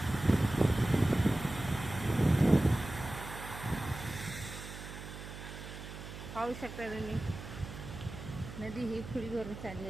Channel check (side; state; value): right; noise; hum, 11 dB below the sound